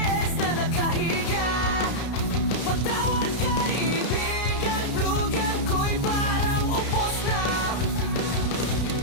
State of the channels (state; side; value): late; right; 32 ms